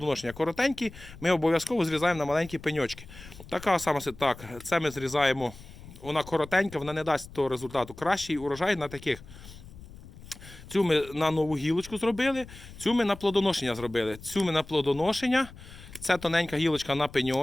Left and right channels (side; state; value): left; noise; rumble, 17 dB below the sound